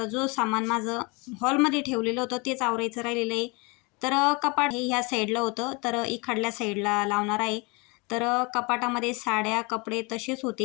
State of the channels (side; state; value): right; quieter; 28.5 dB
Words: जो सामान माझं हॉलमध्ये ठेवलेलं होतं तेच आवरायचं राहिलेलं आहे. तर कपाट हे ह्या साईडला होतं, तर इकडल्या साईडला लावणार आहे. तर कपाटामध्ये साड्या, कपडे तसेच